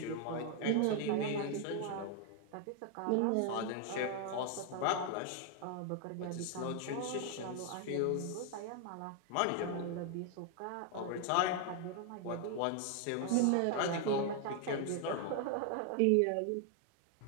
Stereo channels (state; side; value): different; both; correlation 0.00